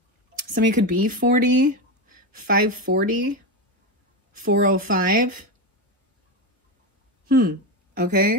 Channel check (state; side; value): normal; both; correlation 0.14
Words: Somebody could be 40, 540, 405.